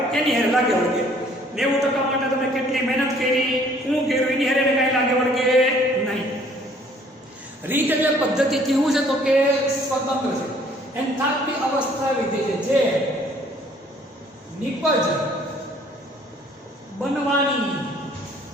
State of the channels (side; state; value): both; normal; correlation 0.58